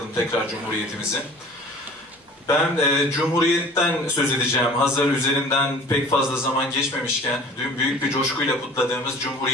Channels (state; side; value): normal; both; correlation 0.46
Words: tekrar Cumhuriyetimizin. Ben Cumhuriyet'ten söz edeceğim. Hazır üzerinden pek fazla zaman geçmemişken dün büyük bir coşkuyla kutladığımız